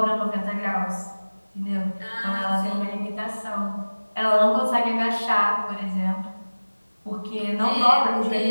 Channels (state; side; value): inverted; both; correlation -1.00